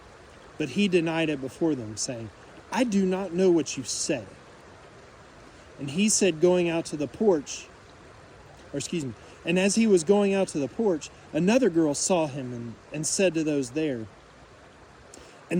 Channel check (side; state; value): both; identical; correlation 1.00